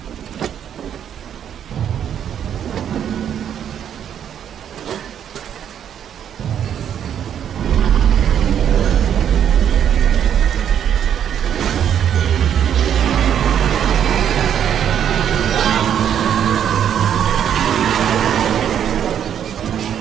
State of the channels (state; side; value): quieter; left; 9.2 dB